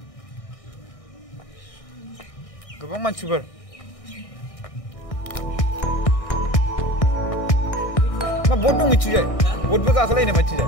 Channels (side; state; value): right; late; 1.6 ms